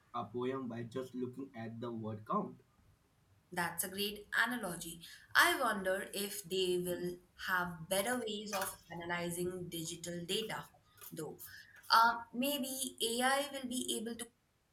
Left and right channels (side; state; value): both; identical; correlation 1.00